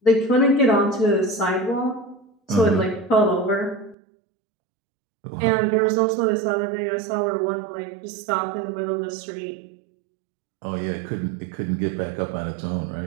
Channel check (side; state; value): left; drops out; at 4.0 s